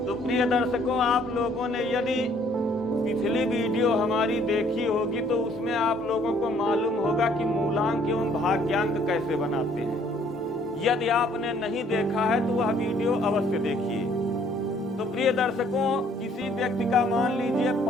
तो प्रिय दर्शकों, आप लोगों ने यदि पिछली वीडियो हमारी देखी होगी तो उसमें आप लोगों को मालूम होगा कि मूलांक एवं भाग्यांक कैसे बनाते हैं। यदि आपने नहीं देखा है तो वह वीडियो अवश्य देखिए। तो प्रिय दर्शकों, किसी व्यक्ति का मान लीजिए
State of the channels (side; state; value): both; normal; correlation 0.62